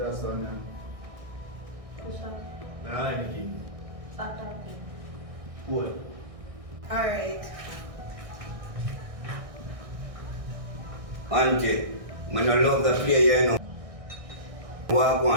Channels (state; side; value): late; left; 1.6 ms